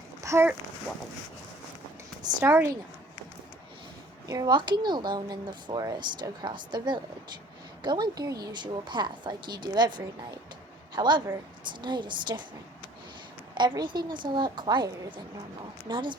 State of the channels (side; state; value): both; normal; correlation 0.53